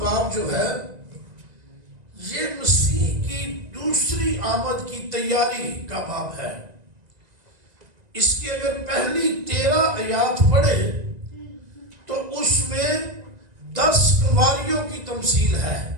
باب جو ہے، یہ مسیح کی دوسری آمد کی تیاری کا باب ہے۔ اس کی اگر پہلی 13 آیات پڑھے تو اس میں 10 کنواریوں کی تمثیل ہے،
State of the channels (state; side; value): late; left; 1.9 ms